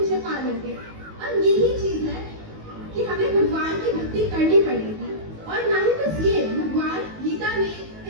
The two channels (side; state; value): left; late; 19 ms